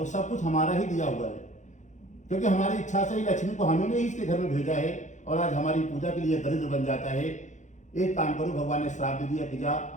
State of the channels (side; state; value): right; late; 0.35 ms